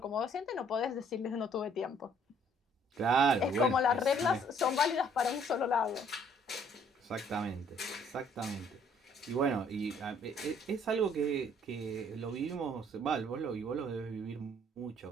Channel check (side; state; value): both; normal; correlation 0.61